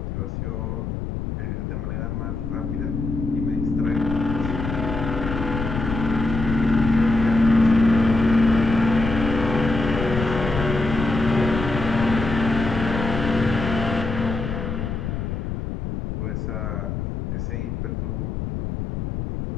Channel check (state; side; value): noise; left; rumble, 4 dB below the sound